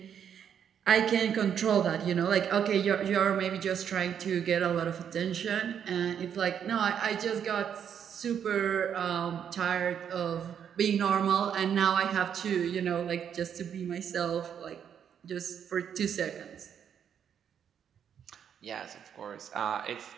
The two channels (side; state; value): left; quieter; 8.4 dB